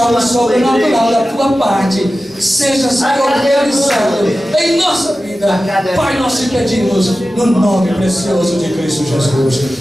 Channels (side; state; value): both; normal; correlation 0.94